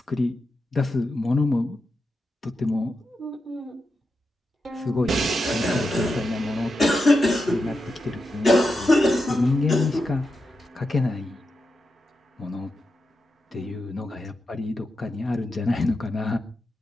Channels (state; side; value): normal; both; correlation 0.88